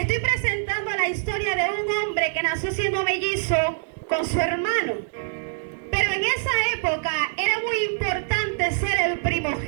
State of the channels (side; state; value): left; silent; 62 dB below the other